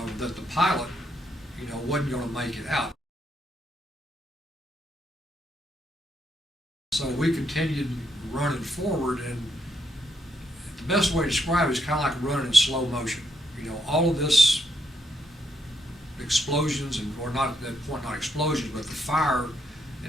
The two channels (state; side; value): normal; both; correlation 0.77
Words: that the pilot, wasn't going to make it out. So we continued running forward, and the best way to describe it is kind of like running in slow motion. All of this explosions, or not at that point, not explosions, but the fire